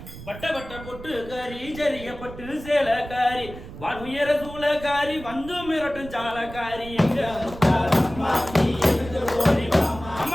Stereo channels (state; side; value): noise; right; rumble, 14 dB below the sound